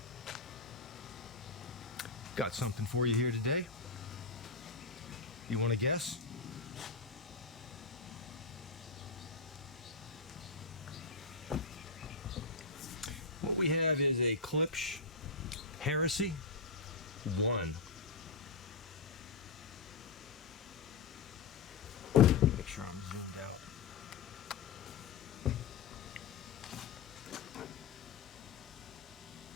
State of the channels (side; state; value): right; quieter; 4.5 dB